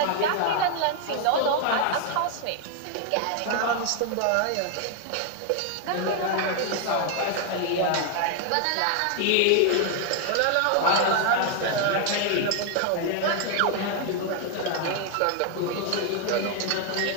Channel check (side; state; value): both; different; correlation 0.00